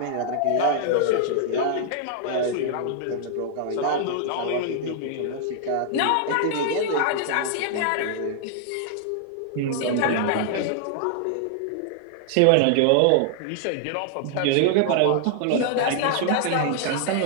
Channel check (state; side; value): different; both; correlation -0.01